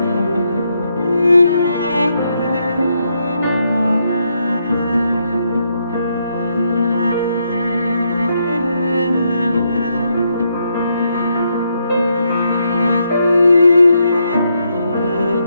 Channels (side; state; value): both; inverted; correlation -0.78